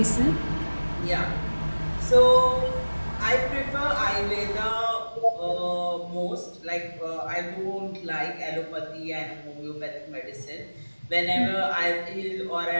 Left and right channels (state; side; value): inverted; both; correlation -1.00